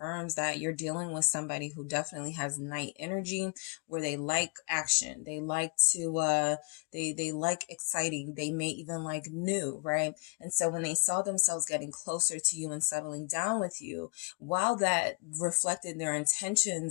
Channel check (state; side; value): quieter; right; 35.5 dB